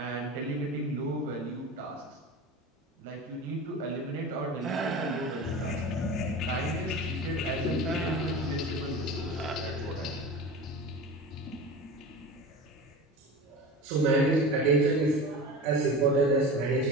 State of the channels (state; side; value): normal; both; correlation 0.31